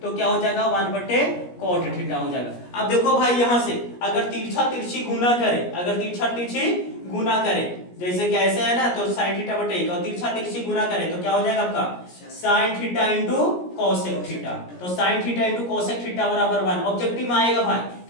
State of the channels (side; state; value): right; late; 17 ms